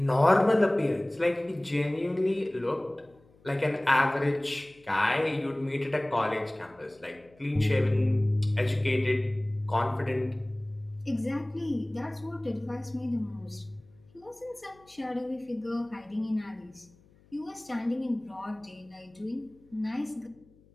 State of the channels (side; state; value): left; noise; hum, 29 dB below the sound